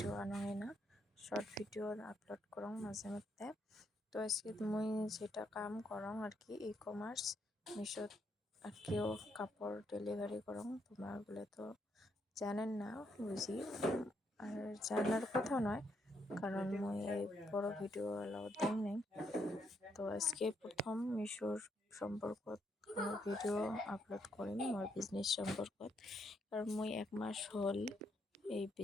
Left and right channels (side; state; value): both; normal; correlation 0.76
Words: আনোই না, শর্ট ভিডিও আপলোড করো মাঝে মধ্যে। তো আজকে তুমি যেটা কাম করো আর কি, ই কমার্স মিশোত আর কিও কাপড় ডেলিভারি করো। তোমরা বলে তো জানেন না বুঝি, আর জানার কথা নয়, কারণ মুই এই বড় ভিডিও এলাও দেই নাই। তো আজকে প্রথম মিশোর সম্পর্কত কোনো ভিডিও আপলোড করিম মোর বিজনেস সম্পর্কত, কারণ মুই 1 মাস হল এই